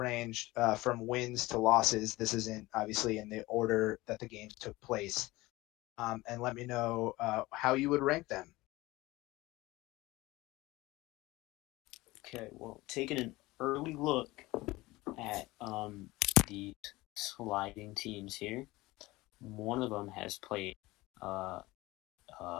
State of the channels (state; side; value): quieter; right; 19.9 dB